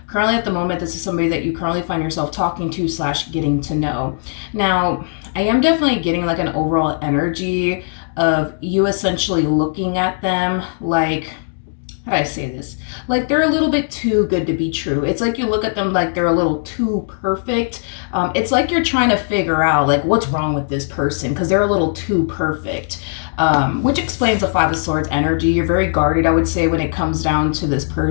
currently at the moment, this is somebody that you currently find yourself talking to / getting to know. Now, I am definitely getting like an overall energy of you essentially looking at them like, how do I say this? Like they're a little bit too good to be true. It's like you look at them like they're a little too perfect. It's like you're trying to figure out like what's wrong with this person because they're a little too perfect. Which explains the Five of Swords energy. You're very guarded, I would say, when it comes down to this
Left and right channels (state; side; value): silent; right; digital silence